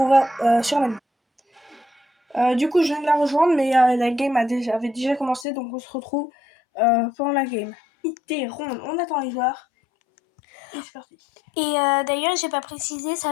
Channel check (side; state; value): right; drops out; at 5.5 s